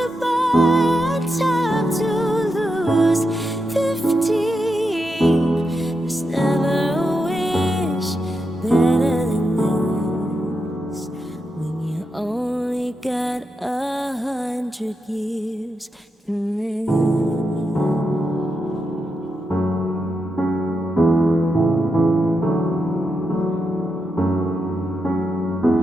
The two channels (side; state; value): both; normal; correlation 0.86